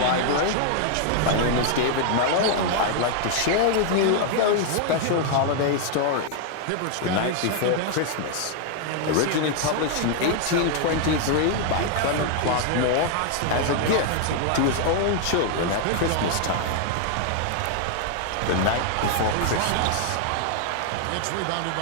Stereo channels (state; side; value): different; both; correlation 0.00